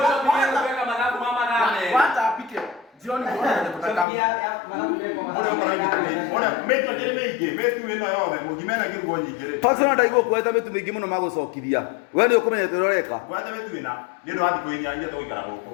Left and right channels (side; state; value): right; drops out; at 4.0 s